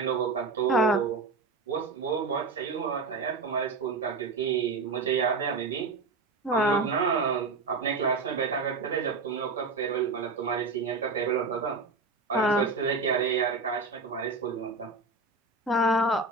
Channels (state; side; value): quieter; left; 3.8 dB